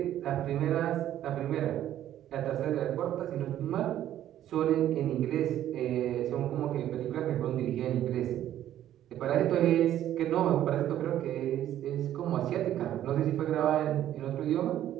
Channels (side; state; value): left; quieter; 12.0 dB